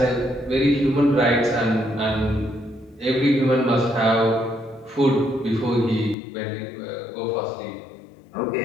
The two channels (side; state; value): right; drops out; at 6.2 s